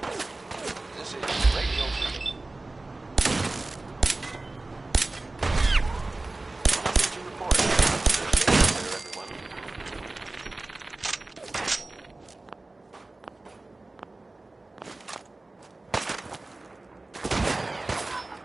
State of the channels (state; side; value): quieter; left; 3.0 dB